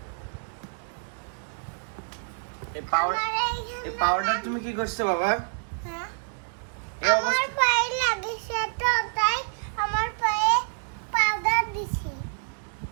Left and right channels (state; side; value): silent; left; 60 dB below the other